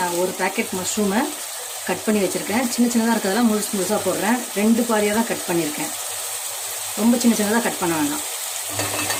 ஒரு பேக்கெட் மஷ்ரூமை கட் பண்ணி வச்சுருக்கேன். சின்ன சின்னதாக இருக்கிறதெல்லாம் முழுசாக போடுறேன். 2 பாதியாக தான் கட் பண்ணியிருக்கேன். ரொம்ப சின்ன சின்னதாக கட் பண்ண வேண்டாம்.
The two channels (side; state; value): both; identical; correlation 1.00